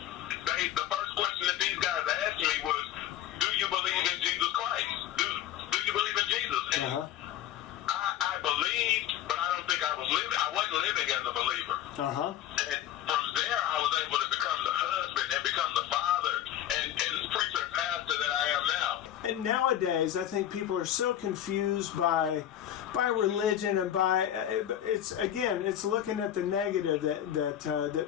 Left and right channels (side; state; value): right; quieter; 11.5 dB